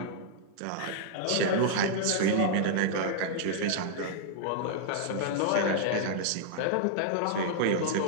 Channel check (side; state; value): both; different; correlation -0.01